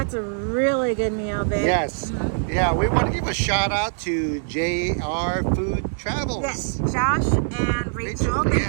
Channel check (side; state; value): left; silent; digital silence